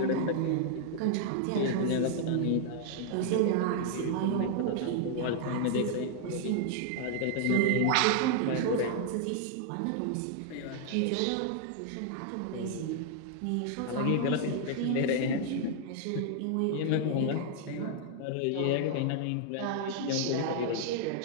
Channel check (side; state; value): both; different; correlation -0.01